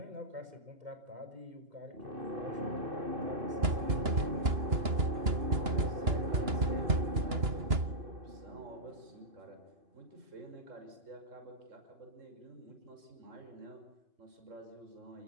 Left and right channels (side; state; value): left; late; 2.9 ms